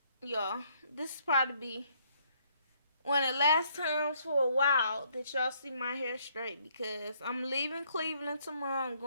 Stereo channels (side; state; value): both; inverted; correlation -0.68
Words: y'all, this is probably be one of the last times for a while that y'all see my hair straight because I'm leaving Cleveland tomorrow. I'm